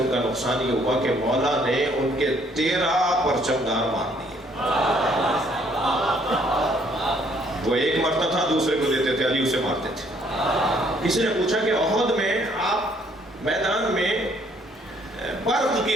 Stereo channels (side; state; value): both; normal; correlation 0.64